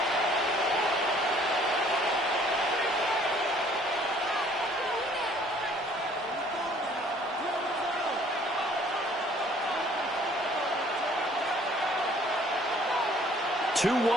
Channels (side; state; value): both; normal; correlation 0.57